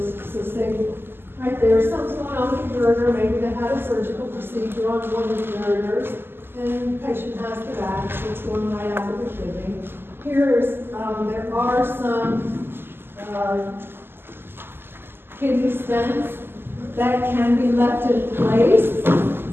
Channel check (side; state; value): left; late; 0.11 ms